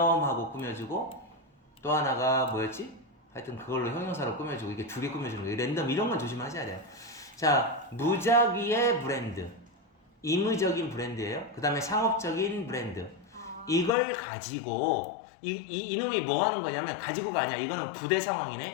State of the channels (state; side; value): drops out; right; at 13.9 s